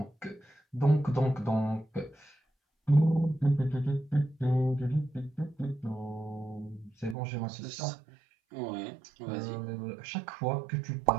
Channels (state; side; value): drops out; left; at 7.2 s